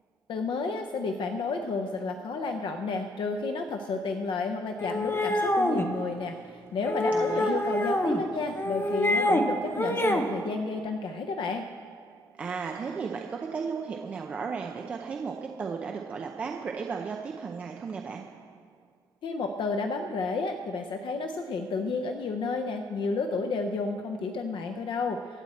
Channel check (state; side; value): normal; both; correlation 0.67